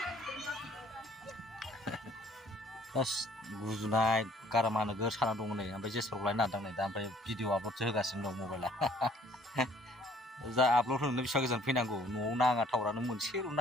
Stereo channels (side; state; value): both; normal; correlation 0.57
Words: गुजुनाय गारामा नोगोर साना दङ नै ओमफ्राय जेसपारखौ लायनो नागिरदों नै दा ओमफ्राय भिडिअ आपल'डसो होगासिनो दं मबाइला जा आपल'ड होनो बेसेबां गोजान फैनांगौ न'आव नाङा टावारानो मोनसेल'